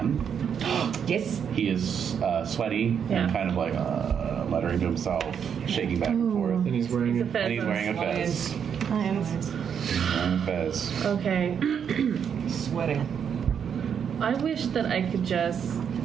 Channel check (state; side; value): quieter; left; 7.7 dB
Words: Yes. He is sweaty Yeah. and kind of like muttering to himself, shaking back and forth. And he's wearing He's a a fez And he's on wearing a fez. Lions. He's wearing a fez. Okay. Sweating. I wish that I could just.